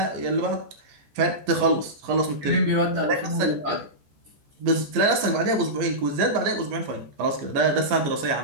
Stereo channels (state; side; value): late; left; 15 ms